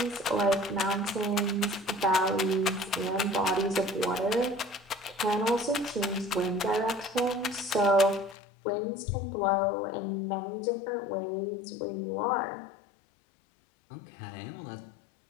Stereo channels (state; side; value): drops out; right; at 8.3 s